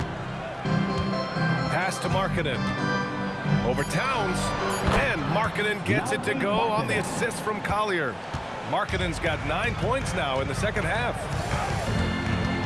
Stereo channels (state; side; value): identical; both; correlation 1.00